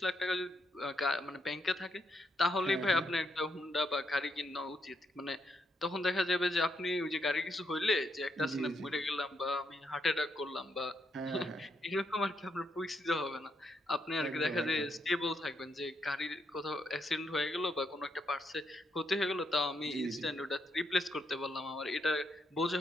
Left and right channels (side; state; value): both; normal; correlation 0.78